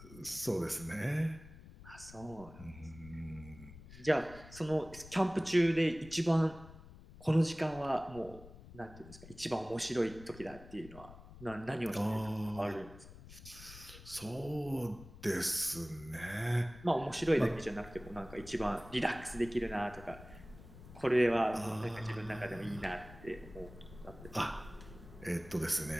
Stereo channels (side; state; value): left; noise; rumble, 17 dB below the sound